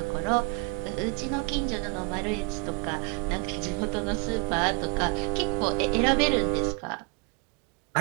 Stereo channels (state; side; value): quieter; left; 34.6 dB